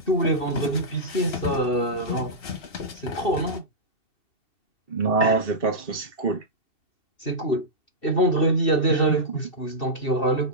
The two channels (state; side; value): late; right; 2.7 ms